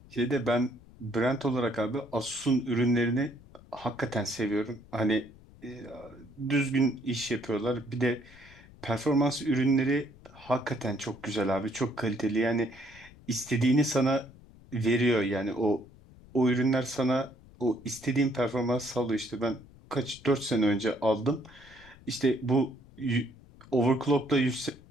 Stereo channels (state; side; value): noise; left; rumble, 23 dB below the sound